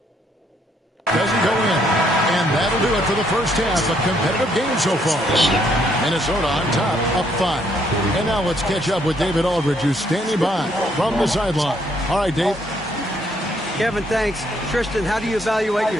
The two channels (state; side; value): normal; both; correlation 0.70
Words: doesn't go in. And that'll do it for the first half. A competitive game so far. Minnesota on top, up 5. And now let's catch up with David Aldridge, who's standing by from the sideline. All right, Dave. Kevin, thanks. Tristan, how do you evaluate